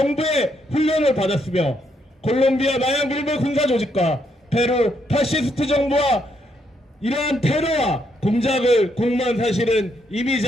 훈련을 받았으며 콜롬비아 마약 밀배 군사 조직과 페루 파시스트 정부와 이러한 테러와 공작을 공모한 사실은 이미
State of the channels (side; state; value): both; normal; correlation 0.75